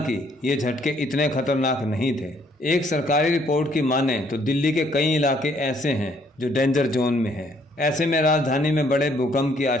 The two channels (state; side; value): normal; both; correlation 0.66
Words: ये झटके इतने खतरनाक नहीं थे। एक सरकारी रिपोर्ट की माने तो दिल्ली के कई इलाके ऐसे हैं जो डेंजर जोन में हैं। ऐसे में राजधानी में बड़े भूकंप की